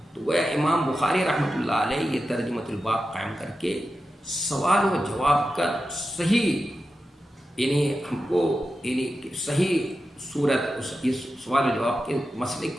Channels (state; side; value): normal; both; correlation 0.91